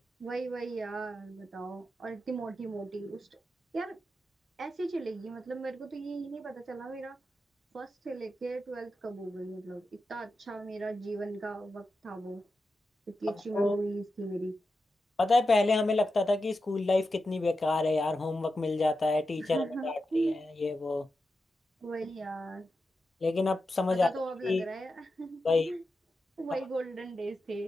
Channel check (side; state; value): both; normal; correlation 0.90